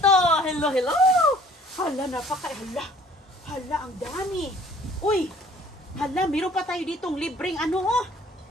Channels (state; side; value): normal; both; correlation 0.55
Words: Hello! Hala, hala, ang dami. Uy, hala, meron pa tayo ditong libreng ano